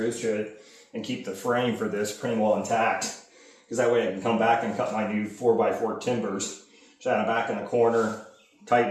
to it and keep the frame for this pretty well intact. Because that way I can come back and cut my new 4x4 timbers, shine it back in the corner,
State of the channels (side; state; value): both; identical; correlation 1.00